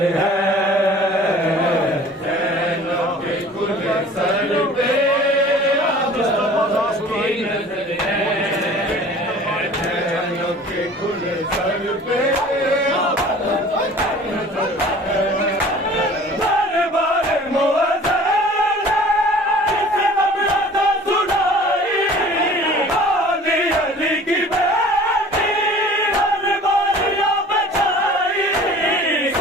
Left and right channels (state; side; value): normal; both; correlation 0.46